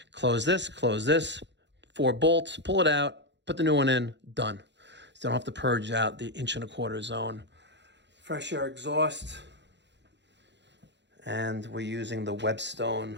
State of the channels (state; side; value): late; left; 0.52 ms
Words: close this, 4 bolts, pull it out, put the new one in, done. So you don't have to purge out the 1.25 inch zone. Fresh air exhaust. And we're using the